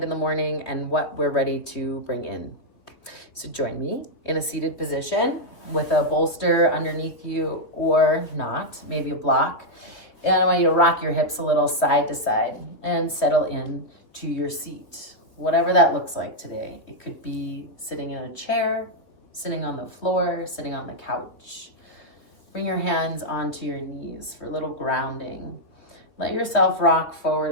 in the morning, and what we're ready to bring in. So join me in a seated position with a bolster underneath you or not, maybe a block. And I want you to rock your hips a little side to side and settle in to your seat, whatever that looks like today. It could be sitting in a chair, sitting on the floor, sitting on the couch. Bring your hands onto your knees for a little grounding. Let yourself rock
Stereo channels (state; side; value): late; right; 2.9 ms